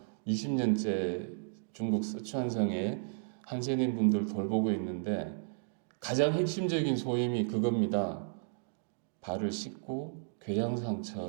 20년째 중국 스촨성에 한센인 분들 돌보고 있는데 가장 핵심적인 소임이 그겁니다. 발을 씻고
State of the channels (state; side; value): silent; left; digital silence